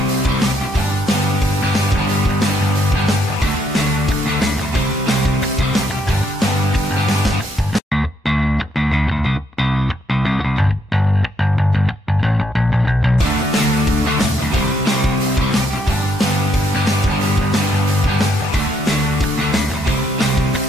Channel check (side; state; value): both; normal; correlation 0.73